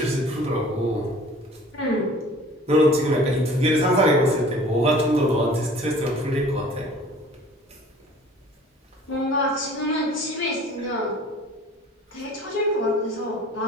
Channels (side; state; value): both; normal; correlation 0.48